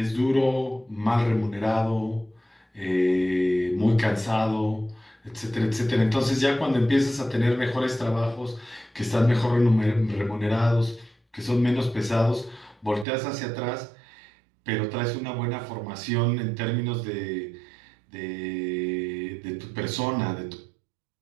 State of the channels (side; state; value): left; drops out; at 13.1 s